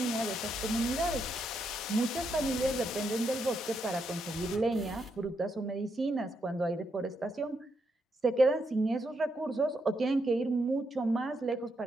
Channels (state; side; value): normal; both; correlation 0.80